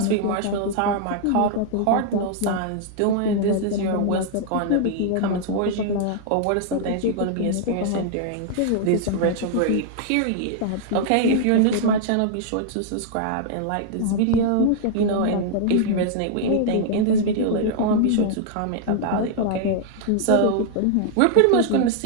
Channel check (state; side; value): different; both; correlation -0.01